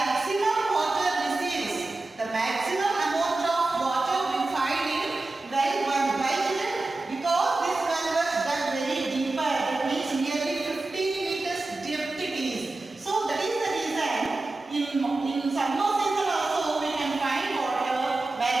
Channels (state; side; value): quieter; left; 3.1 dB